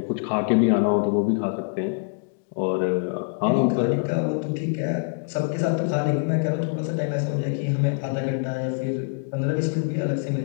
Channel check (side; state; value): right; silent; 62 dB below the other